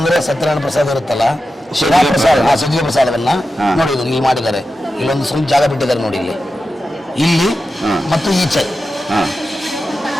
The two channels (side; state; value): both; normal; correlation 0.92